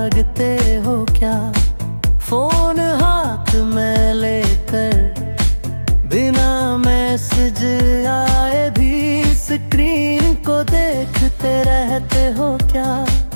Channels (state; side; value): inverted; both; correlation -1.00